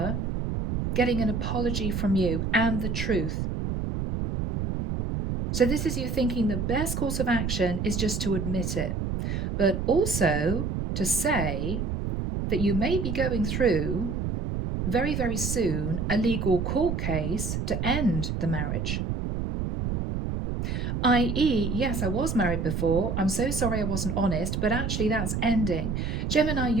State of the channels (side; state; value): right; noise; rumble, 2 dB below the sound